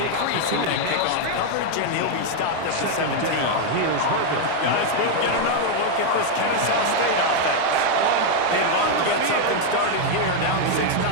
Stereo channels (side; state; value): both; different; correlation 0.00